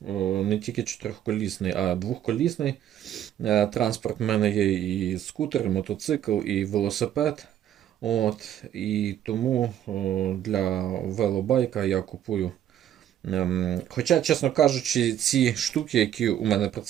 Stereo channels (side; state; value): left; quieter; 10.9 dB